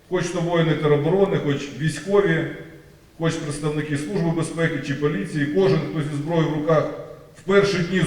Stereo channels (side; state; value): both; identical; correlation 1.00